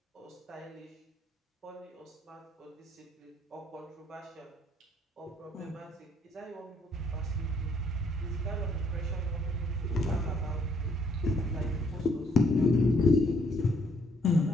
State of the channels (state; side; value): normal; both; correlation 0.67